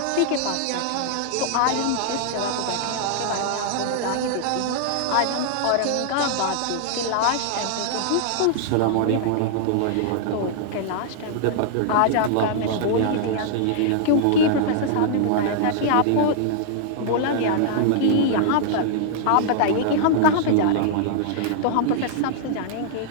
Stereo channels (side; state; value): both; different; correlation -0.01